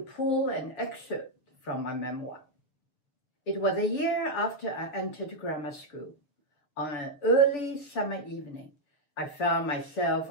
an excerpt from my memoir. It was a year after I entered grammar school. On an early summer evening, I found myself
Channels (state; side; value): late; right; 6.9 ms